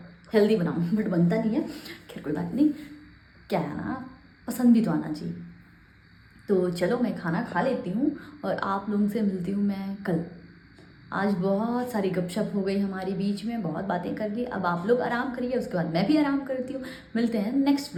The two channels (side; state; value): both; identical; correlation 1.00